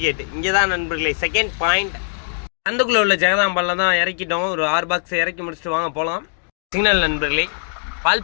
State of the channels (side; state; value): right; silent; digital silence